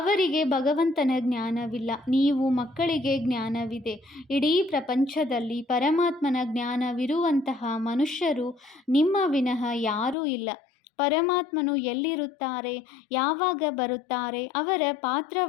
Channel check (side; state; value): right; drops out; at 10.2 s